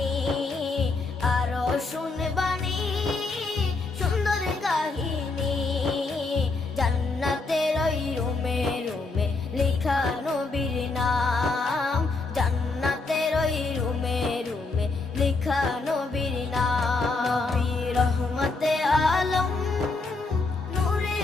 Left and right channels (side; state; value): right; quieter; 3.7 dB